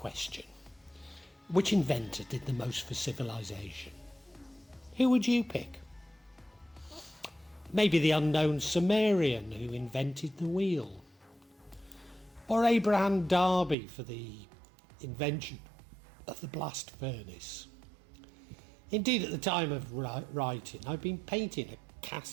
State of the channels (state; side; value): drops out; left; at 13.8 s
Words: which inventor did the most for civilization, who would you pick? Maybe the unknown Sumerian who invented the wheel, or Abraham Darby for the invention of the blast furnace. Indeed, at the time of writing, I've been painting the